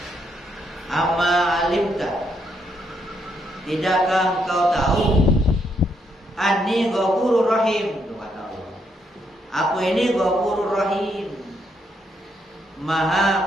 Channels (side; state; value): both; normal; correlation 0.76